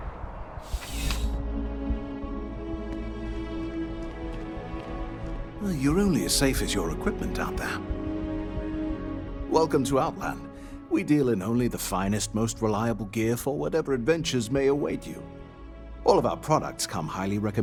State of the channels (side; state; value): both; identical; correlation 1.00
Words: Well, you're only as safe as your equipment out there. Welcome to Outland. We deal in only the finest, most reliable gear for whatever adventures may await you. All of our products come highly